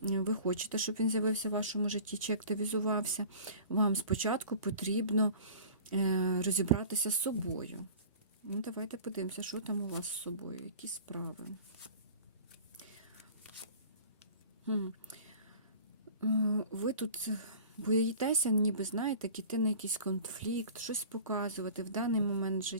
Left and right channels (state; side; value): inverted; both; correlation -0.43